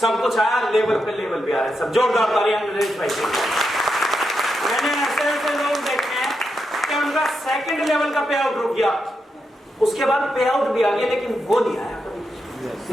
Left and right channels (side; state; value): both; normal; correlation 0.84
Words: कुछ आया, लेवल पे लेवल भी आ रहा है। सब जोरदार तालियां नरेश भाई के। मैंने ऐसे ऐसे लोग देखे हैं कि उनका 2nd लेवल का पे आउट रुक गया, उसके बाद पे आउट भी आ गया, लेकिन वो नहीं आया।